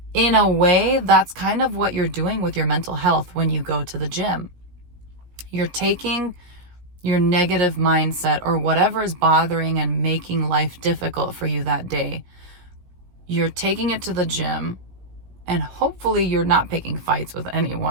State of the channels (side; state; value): left; late; 16 ms